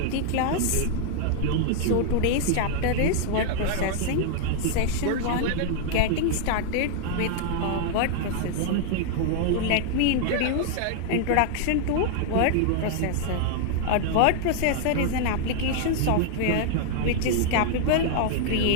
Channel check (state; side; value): different; both; correlation 0.00